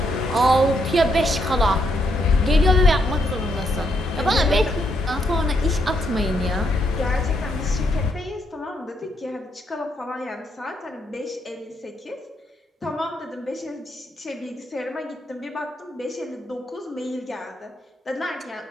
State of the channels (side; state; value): both; normal; correlation 0.76